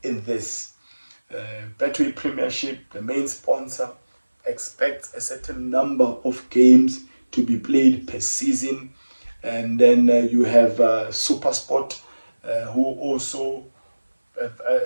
in this. Betway Premiership, the main sponsor, expects a certain number of games to be played per season. And then you have SUPERSPORT, who also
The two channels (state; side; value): inverted; both; correlation -1.00